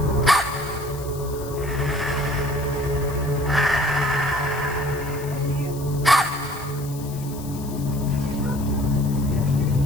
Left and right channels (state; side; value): noise; left; hiss, 16 dB below the sound